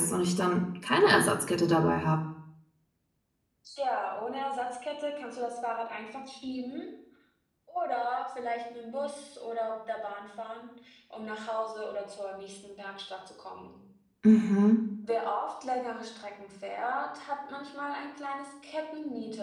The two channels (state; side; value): identical; both; correlation 1.00